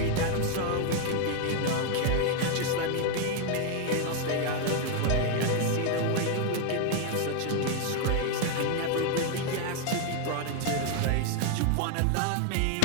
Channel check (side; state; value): both; different; correlation 0.01